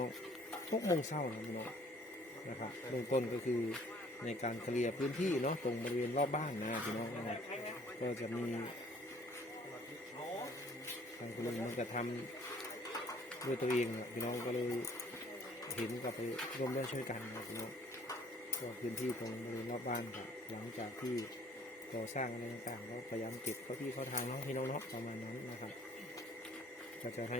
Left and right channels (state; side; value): normal; both; correlation 0.57